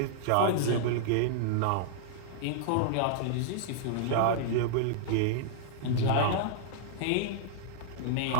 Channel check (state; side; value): different; both; correlation -0.02